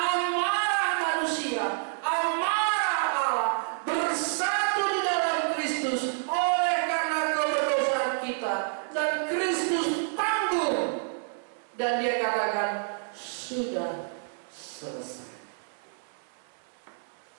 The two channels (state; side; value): silent; left; 58 dB below the other